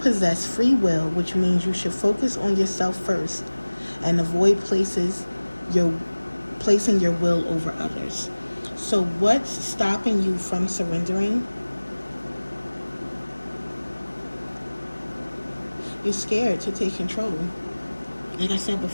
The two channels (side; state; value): both; inverted; correlation -1.00